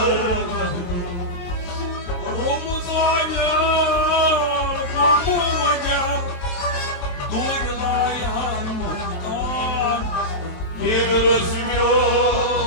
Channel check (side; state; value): right; late; 23 ms